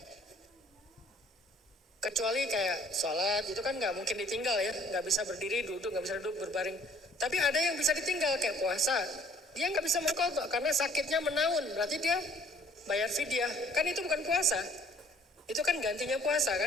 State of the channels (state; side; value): normal; both; correlation 0.57